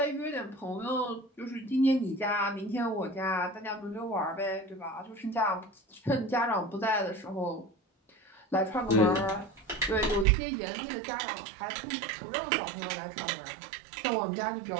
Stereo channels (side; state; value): left; drops out; at 10.2 s